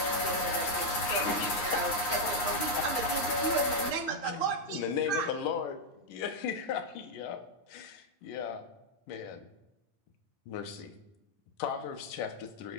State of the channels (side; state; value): right; late; 9.7 ms